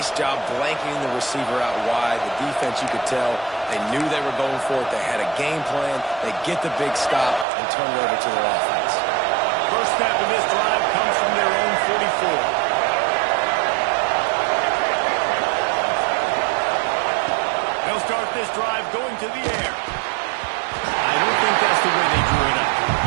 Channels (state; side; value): drops out; left; at 7.5 s